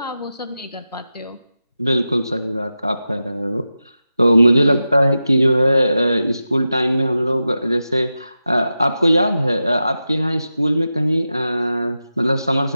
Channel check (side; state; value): both; inverted; correlation -0.92